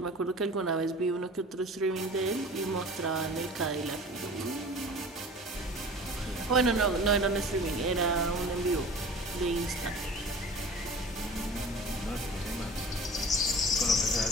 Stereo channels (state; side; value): normal; both; correlation 0.41